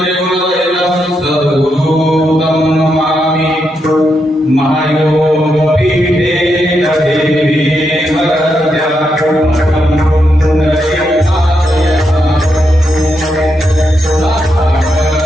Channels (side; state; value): both; normal; correlation 0.82